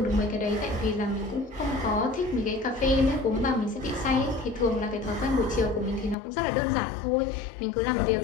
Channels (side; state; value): right; drops out; at 6.2 s